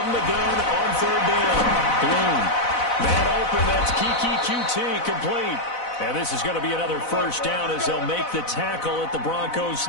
the gun on 3rd down. Bloom. Man open, that's Kiki QT, complete. And this is going to be another 1st down as they'll make the tackle at the Broncos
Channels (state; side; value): late; right; 4.0 ms